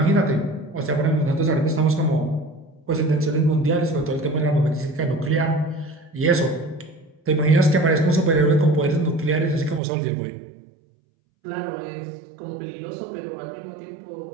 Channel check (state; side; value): drops out; left; at 9.8 s